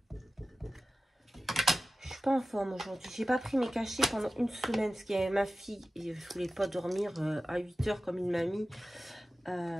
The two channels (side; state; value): both; normal; correlation 0.95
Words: Je suis pas en forme aujourd'hui. J'ai pas pris mes cachets pendant une semaine parce qu'il y avait ma fille et je voulais pas dormir à 8 h comme une mamie.